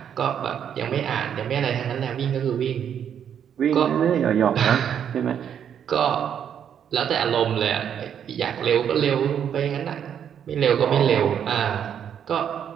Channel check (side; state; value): left; quieter; 8.7 dB